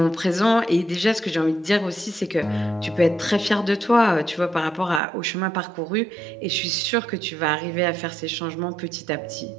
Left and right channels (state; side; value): drops out; left; at 5.0 s